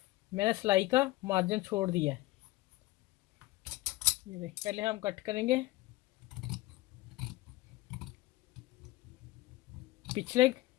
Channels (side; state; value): right; quieter; 18.6 dB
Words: मैंने सिलाई का मार्जिन छोड़ दिया है। ये देखिए पहले हम कट करेंगे पिछले